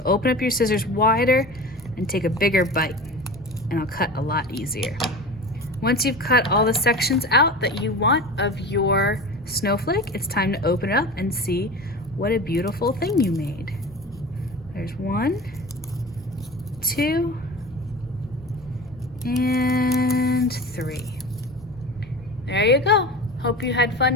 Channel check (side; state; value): both; normal; correlation 0.33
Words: open up your scissors wider and take a bigger bite, and I'll cut a lot easier. Once you've cut all the sections out that you want of your snowflake, it's time to open it up and see what a beautiful thing you made. There's 1, 2, and 3. There you go. Hope you had